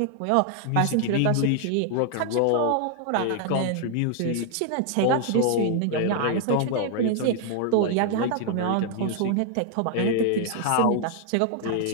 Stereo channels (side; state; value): both; different; correlation 0.00